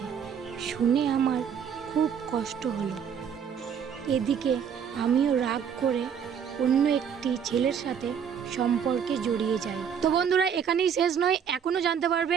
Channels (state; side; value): quieter; left; 7.7 dB